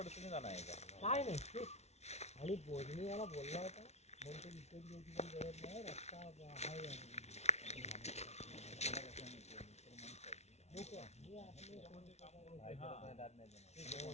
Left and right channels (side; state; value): right; late; 0.31 ms